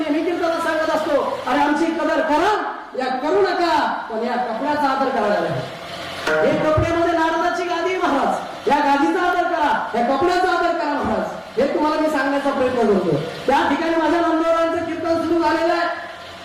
मी कीर्तनात सांगत असतो अरे आमची कदर करा या करू नका, पण या कपड्याचा आदर करायला. हे कपड्यामध्ये नारदाची गादी महाराज, या गादीचा आदर करा, या कपड्याचा आदर करा महाराज. हे तुम्हाला मी सांगण्याचा प्रयत्न करतो. त्या ठिकाणी माझ्या नामदेवरायांचं कीर्तन सुरू झालेलं आहे.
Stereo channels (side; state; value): both; identical; correlation 1.00